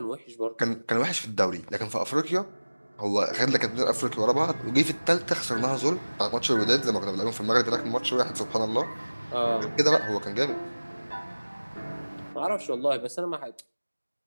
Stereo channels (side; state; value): both; inverted; correlation -1.00